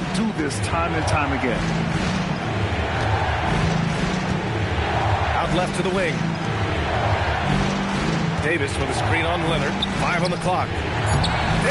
do this time and time again. Out left to the wing. Davis with a screen on Leonard. 5 on the clock.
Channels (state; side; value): identical; both; correlation 1.00